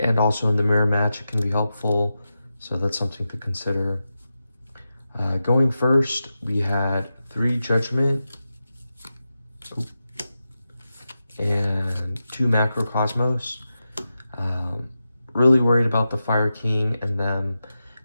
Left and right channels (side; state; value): both; inverted; correlation -0.91